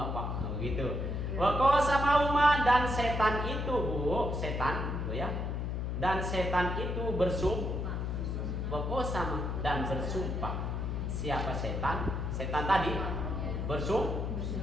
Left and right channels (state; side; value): noise; left; hum, 2 dB below the sound